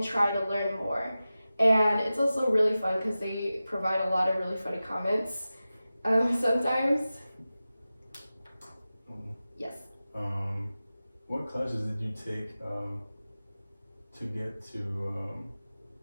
try to learn more. And it's also really fun because they provide a lot of really funny comments sometimes. Yes. What classes did you take to get to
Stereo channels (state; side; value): inverted; both; correlation -0.95